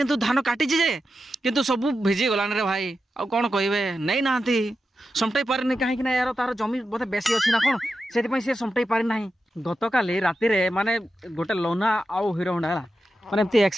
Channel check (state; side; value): normal; both; correlation 0.90